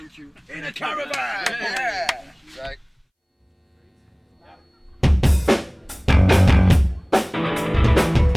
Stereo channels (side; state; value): both; identical; correlation 1.00